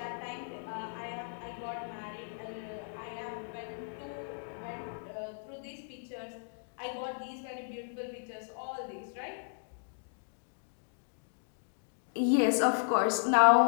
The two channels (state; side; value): silent; right; digital silence